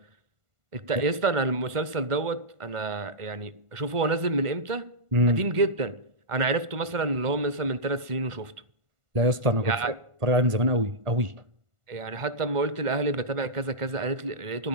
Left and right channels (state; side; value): late; left; 1.5 ms